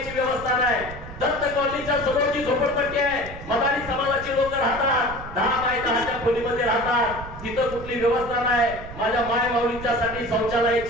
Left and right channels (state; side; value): noise; right; rumble, 13 dB below the sound